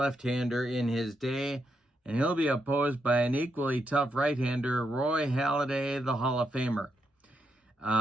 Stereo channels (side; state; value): both; normal; correlation 0.82